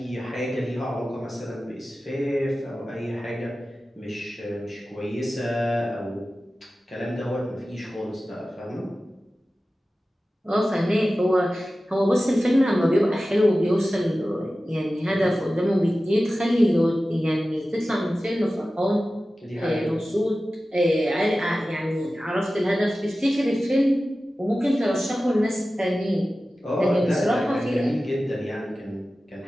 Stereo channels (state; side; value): normal; both; correlation 0.95